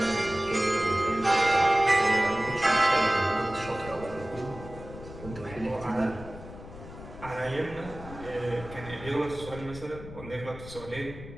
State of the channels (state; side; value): noise; left; rumble, 14 dB below the sound